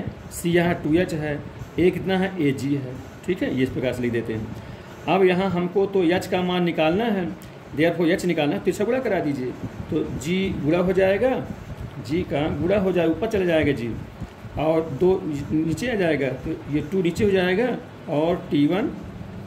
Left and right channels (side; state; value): both; identical; correlation 1.00